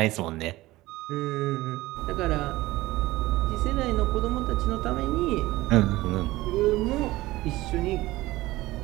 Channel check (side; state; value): left; quieter; 18.2 dB